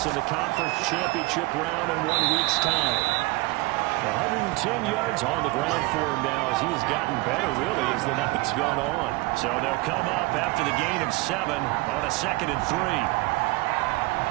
in the conference championship round in 1 week's time. 110 yards on the ground for him now as he's gotten better, really, as the night's gone on. So they'll come up after the gain of 7 on a 2nd and 3.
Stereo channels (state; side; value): quieter; left; 22.9 dB